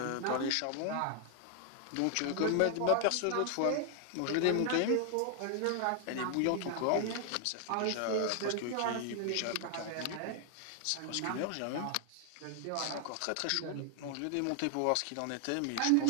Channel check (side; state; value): both; different; correlation 0.00